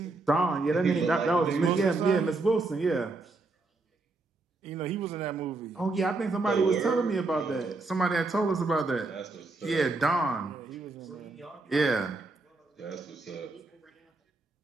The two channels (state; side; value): quieter; left; 3.4 dB